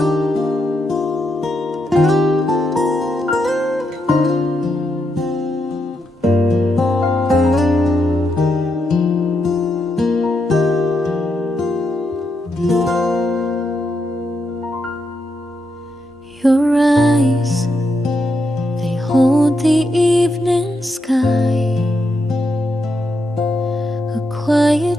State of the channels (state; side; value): normal; both; correlation 0.82